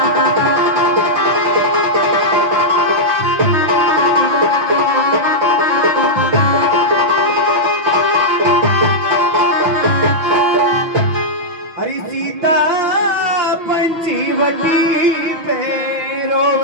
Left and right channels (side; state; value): left; late; 6.0 ms